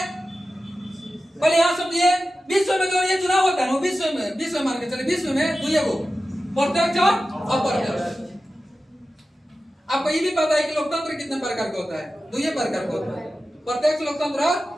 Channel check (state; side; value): normal; both; correlation 0.94